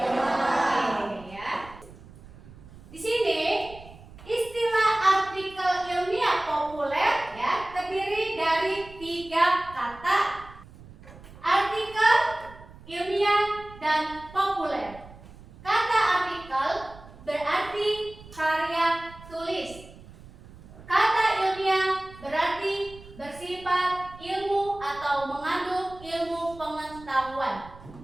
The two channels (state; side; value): noise; right; rumble, 19 dB below the sound